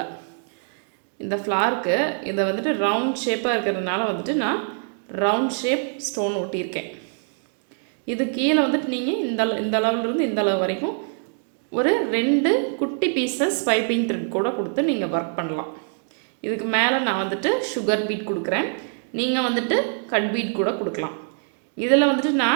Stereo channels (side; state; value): left; silent; 58 dB below the other